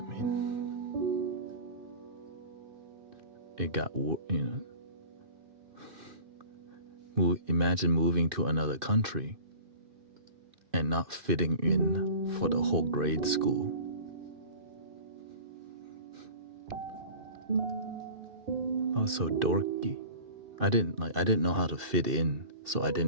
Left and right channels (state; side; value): late; left; 2.6 ms